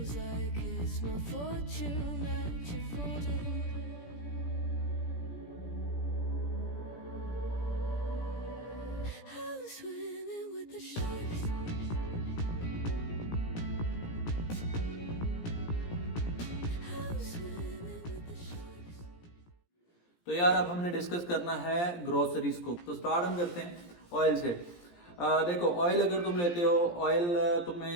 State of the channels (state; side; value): late; right; 17 ms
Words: तो यार अब हमने डिस्कस करना है ग्रोसरीज को। तो स्टार्ट हम करते हैं ऑयल से। देखो ऑयल अगर तुम लेते हो, ऑयल